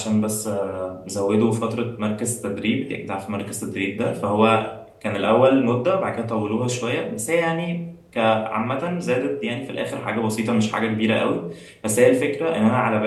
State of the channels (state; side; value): identical; both; correlation 1.00